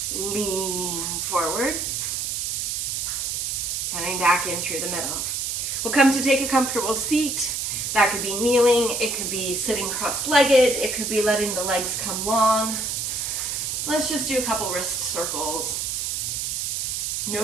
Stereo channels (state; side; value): noise; right; hiss, 1 dB below the sound